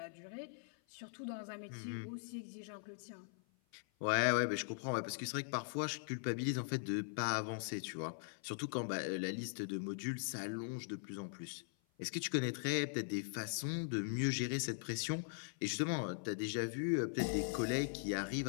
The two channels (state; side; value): silent; right; 50 dB below the other